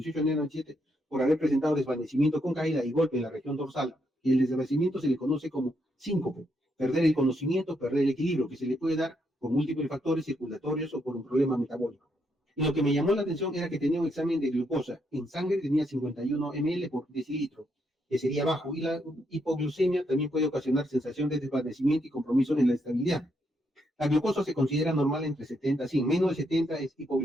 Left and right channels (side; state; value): both; normal; correlation 0.77